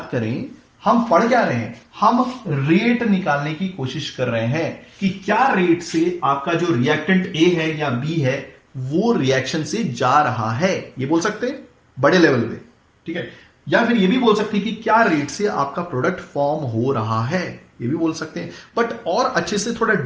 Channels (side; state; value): both; identical; correlation 1.00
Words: करें, हम पढ़ क्या रहे हैं, हम रेट निकालने की कोशिश कर रहे हैं कि क्या रेट से आपका जो रिएक्टेंट ए है या बी है वो रिएक्शन से जा रहा है, ये बोल सकते हैं बड़े लेवल पे। ठीक है, या फिर ये भी बोल सकते हैं कि क्या रेट से आपका प्रोडक्ट फॉर्म हो रहा है, ये भी बोल सकते हैं। बट और अच्छे से थोड़ा